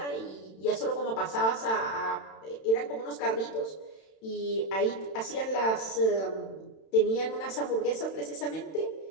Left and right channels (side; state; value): right; late; 31 ms